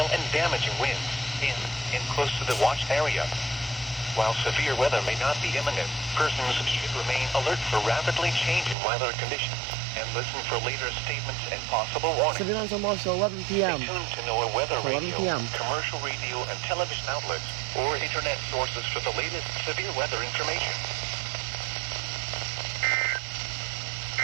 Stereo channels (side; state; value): left; drops out; at 8.8 s